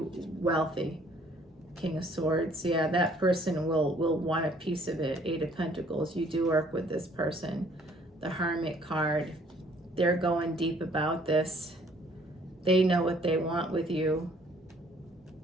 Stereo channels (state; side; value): normal; both; correlation 0.60